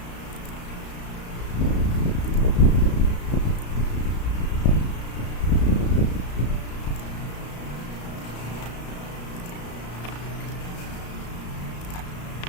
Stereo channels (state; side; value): late; right; 34 ms